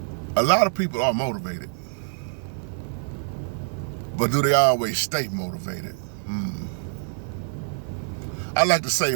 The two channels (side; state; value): left; silent; 61 dB below the other